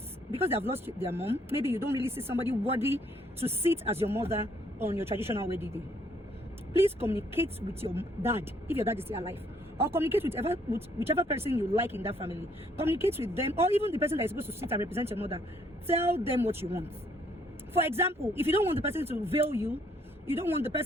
because they have lost their mom, maybe you don't really see somebody worthy to sit as your mother on your traditional wedding day. Please communicate with your dad, if your dad is still alive, or communicate with whichever person you like in that family. Communicate with them, or even the person that is supposed to sit and represent your mother. Tell them what you want. For example, if you don't want the person to veil you, you don't want the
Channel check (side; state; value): both; normal; correlation 0.66